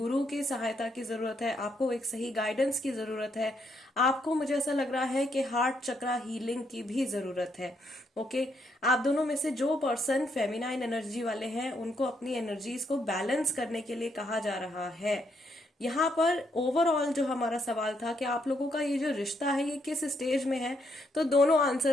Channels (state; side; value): normal; both; correlation 0.75